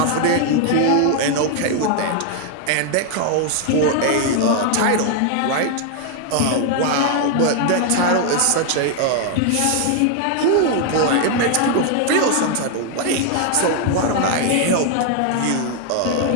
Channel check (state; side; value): different; both; correlation 0.00